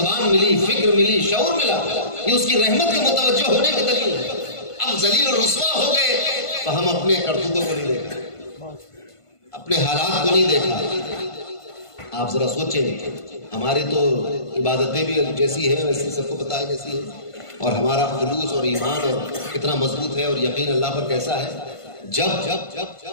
ملی، فکر ملی، شعور ملا، یہ اس کی رحمت کے متوجہ ہونے کی دلیل ہے۔ اب ذلیل و رسوا ہو گئے تو ہم اپنے کرتوتوں کو نہیں دیکھا، اپنے حالات کو نہیں دیکھا۔ آپ ذرا سوچیں، ہماری تو عبادتیں بھی جیسی ہیں ویسے سب کو پتہ ہے کیسی ہے، اور ہمارا خلوص اور ایمان اور کتنا مضبوط ہے اور یقین اللہ پر کیسا ہے۔ جب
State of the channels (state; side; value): late; right; 1.5 ms